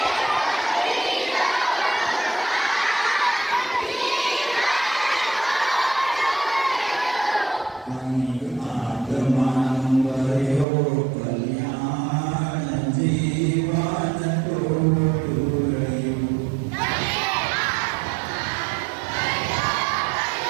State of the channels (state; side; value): drops out; left; at 10.7 s